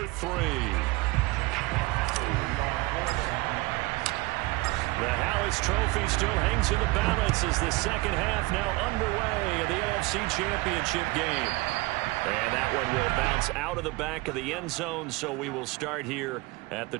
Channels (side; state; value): left; quieter; 22.9 dB